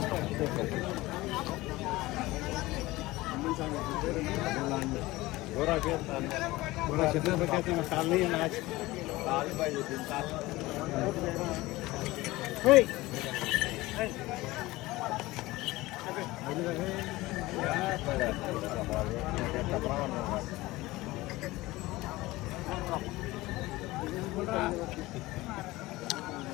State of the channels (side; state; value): right; quieter; 19.3 dB